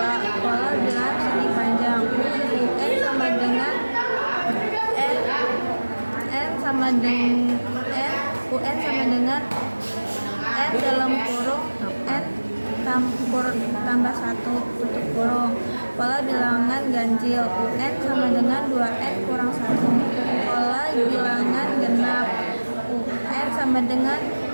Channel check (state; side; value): inverted; both; correlation -1.00